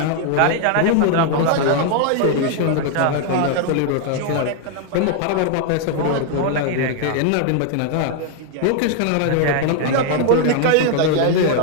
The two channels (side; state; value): both; different; correlation 0.00